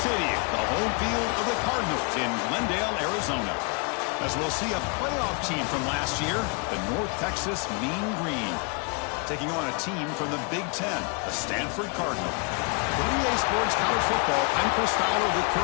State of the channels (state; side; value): quieter; right; 33.5 dB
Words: City, the home field of the Cardinals in Glendale, Arizona. As we'll see a playoff team from last year, the North Texas Mean Green, taking on a team from the Big Ten, the Stanford Cardinal. For EA Sports College Football, I'm Chris Fowler with